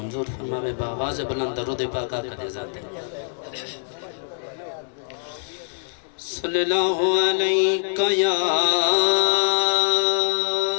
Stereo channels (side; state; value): right; silent; digital silence